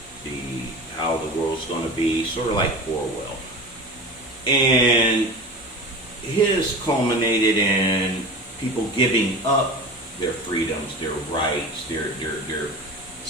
how the world's going to be, sort of like Orwell. And his culminated in people giving up their freedoms, their rights, their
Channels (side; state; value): both; normal; correlation 0.33